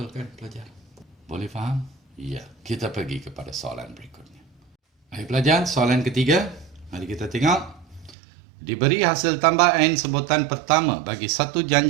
kan pelajar? Boleh faham? Ya, kita pergi kepada soalan berikutnya. Baik pelajar, soalan ketiga. Mari kita tengok. Diberi hasil tambah N sebutan pertama bagi satu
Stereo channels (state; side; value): drops out; left; at 8.2 s